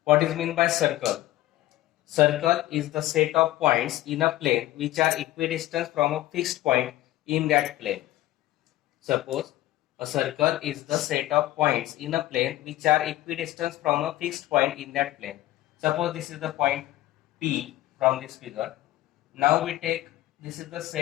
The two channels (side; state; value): right; quieter; 15.8 dB